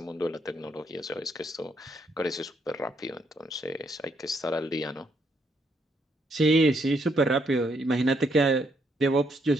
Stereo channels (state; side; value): normal; both; correlation 0.74